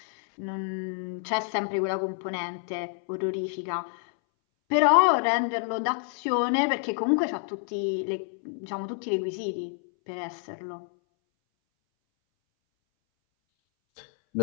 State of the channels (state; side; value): silent; right; 59 dB below the other